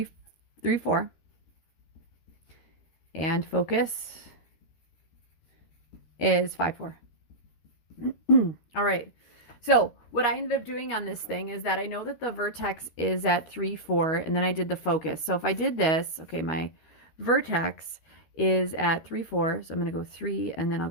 3, 4. And focus is 5, 4. All right. So what I ended up doing on this thing is that I know that the vertex is at 3, 4, and then I did the focus. So if I did this, okay, my vertex is at 3, 4. So I'm going to go 3, and then I'll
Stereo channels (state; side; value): late; right; 13 ms